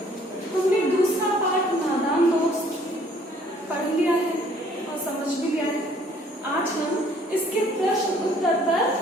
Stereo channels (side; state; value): both; normal; correlation 0.59